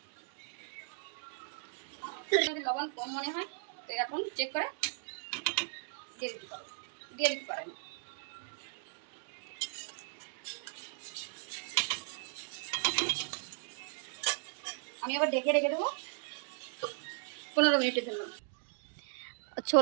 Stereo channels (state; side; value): silent; left; digital silence